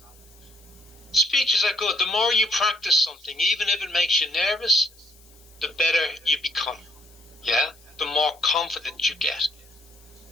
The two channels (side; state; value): left; noise; hiss, 27 dB below the sound